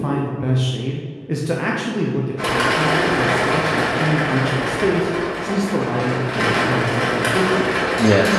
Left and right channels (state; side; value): identical; both; correlation 1.00